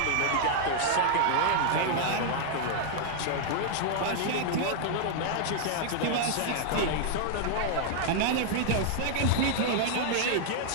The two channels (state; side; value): different; both; correlation -0.01